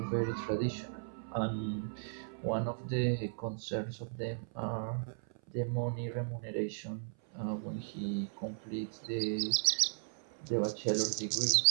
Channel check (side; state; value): left; silent; 54 dB below the other